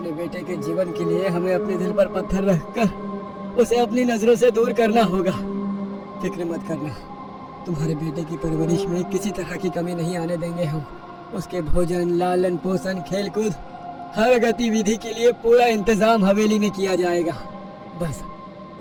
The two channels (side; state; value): both; identical; correlation 1.00